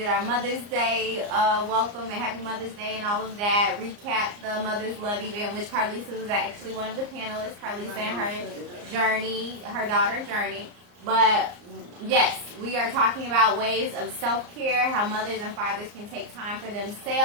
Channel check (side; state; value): left; late; 34 ms